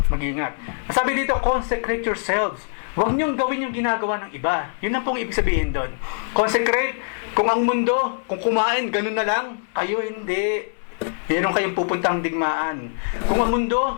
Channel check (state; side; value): silent; right; digital silence